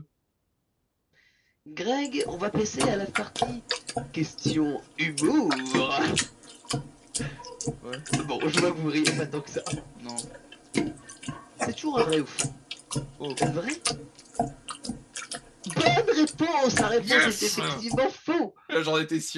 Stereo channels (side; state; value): both; identical; correlation 1.00